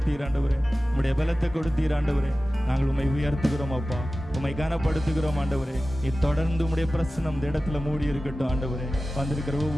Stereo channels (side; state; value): both; normal; correlation 0.96